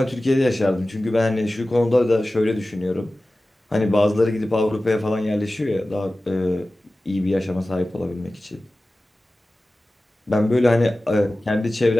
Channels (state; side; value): normal; both; correlation 0.96